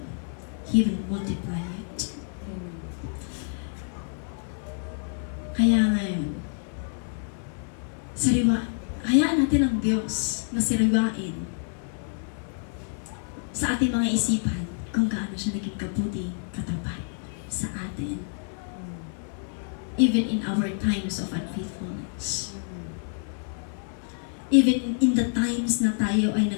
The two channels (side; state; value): right; silent; 60 dB below the other